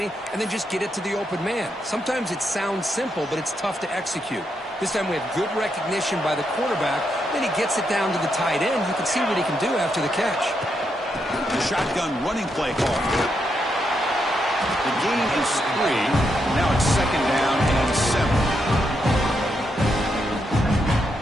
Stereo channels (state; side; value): normal; both; correlation 0.81